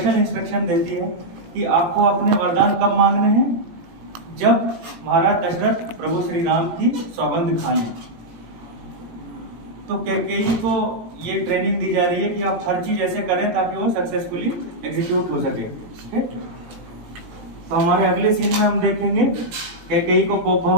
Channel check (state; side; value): late; left; 18 ms